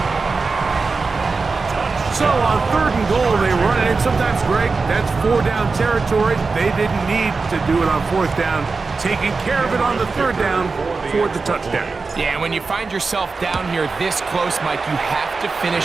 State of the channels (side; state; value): left; quieter; 4.3 dB